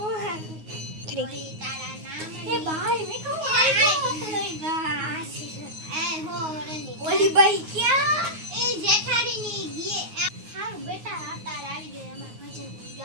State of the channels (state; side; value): late; left; 9.5 ms